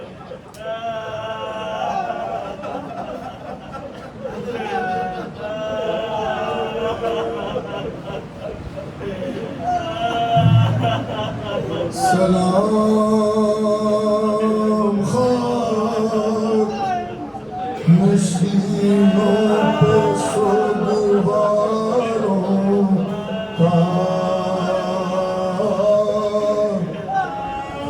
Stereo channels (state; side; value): identical; both; correlation 1.00